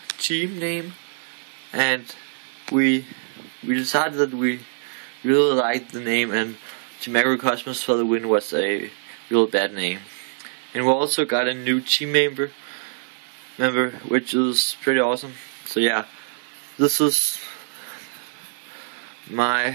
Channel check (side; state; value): left; silent; digital silence